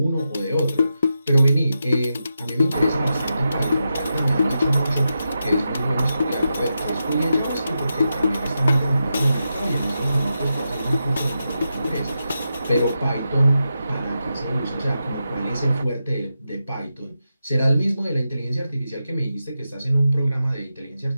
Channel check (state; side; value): inverted; both; correlation -0.88